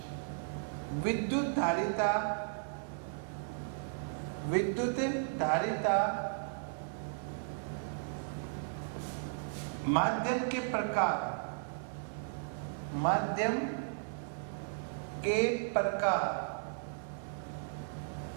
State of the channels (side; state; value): left; silent; digital silence